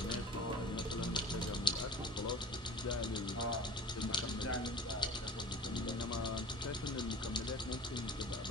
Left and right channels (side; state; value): both; normal; correlation 0.41